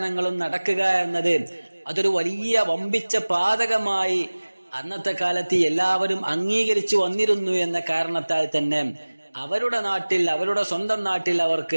നടക്കുക എന്നത് അതൊരു വലിയ വമ്പിച്ച പാതകമായി അന്നത്തെ കാലത്ത് എല്ലാവരും അംഗീകരിച്ചു വന്നിരുന്നു എന്ന കാരണത്താൽ തന്നെ അവരുടെ നാട്ടിൽ, അവരുടെ സ്വന്തം നാട്ടിൽ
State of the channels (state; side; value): inverted; both; correlation -1.00